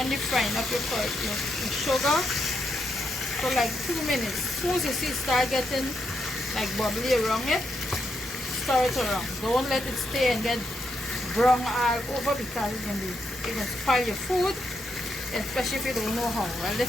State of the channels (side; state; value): both; normal; correlation 0.81